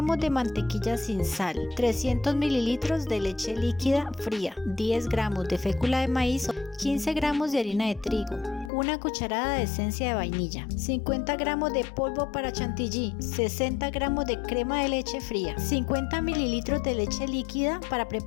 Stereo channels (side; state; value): right; drops out; at 8.7 s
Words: de mantequilla sin sal, 300 mililitros de leche líquida fría, 10 gramos de fécula de maíz, 15 gramos de harina de trigo, una cucharada de esencia de vainilla, 50 gramos de polvo para chantilly, 60 gramos de crema de leche fría, 50 mililitros de leche líquida para